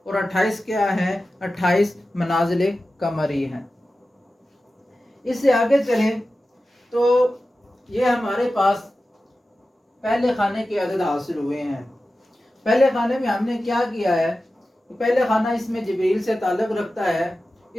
اور 28 کیا ہے؟ 28 منازل قمری ہیں۔ اس سے آگے چلیں تو یہ ہمارے پاس پہلے خانے کے عدد حاصل ہوئے ہیں. پہلے خانے میں ہم نے کیا کیا ہے؟ پہلے خانہ اس میں جبریل سے تعلق رکھتا ہے.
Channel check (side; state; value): both; normal; correlation 0.94